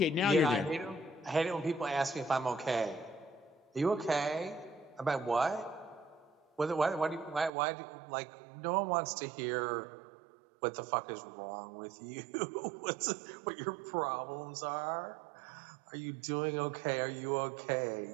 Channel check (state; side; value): drops out; left; at 7.5 s